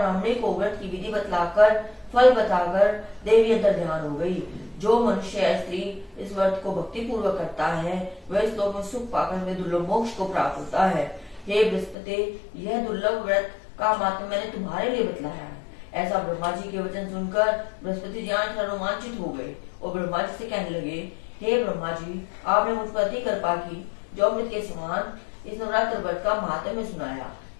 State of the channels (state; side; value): drops out; right; at 12.0 s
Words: को व्रत की विधि बतलाकर फल बताकर देवी अंतर ध्यान हो गई। जो मनुष्य या स्त्री इस व्रत को भक्ति पूर्वक करता है वह इस लोक में सुख पाकर में दुर्लभ मोक्ष को प्राप्त होता है। हे बृहस्पति, यह दुर्लभ व्रत का मात्र मैंने तुम्हारे लिए बतलाया है। ऐसा ब्रह्मा जी के वचन सुनकर बृहस्पति जी रोमांचित हो गए और ब्रह्मा जी से कहने लगे, हे ब्रह्मा जी, आपने मुझ पर अति कृपा की जो अमृत के समान इस नवरात्र व्रत का महात्म्य सुनाया।